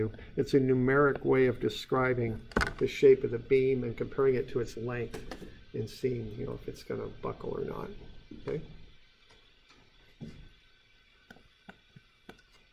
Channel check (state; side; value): identical; both; correlation 1.00